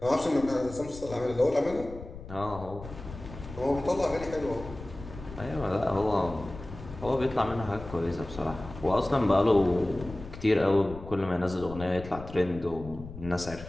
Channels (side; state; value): left; noise; rumble, 13 dB below the sound